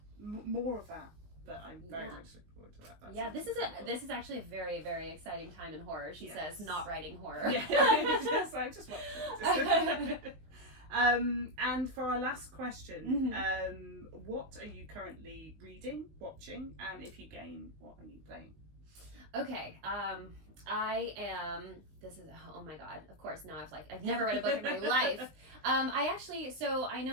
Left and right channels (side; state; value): left; late; 19 ms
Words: more of that. But I'm very much looking forward to that. This is actually a very, very exciting time in horror. She says, not writing horror. Yeah, I just want to. And for our last question, what are you currently reading, watching, and if you game, what are you playing? Okay, I am, oh my god, of course, now I've never read a book in my life. I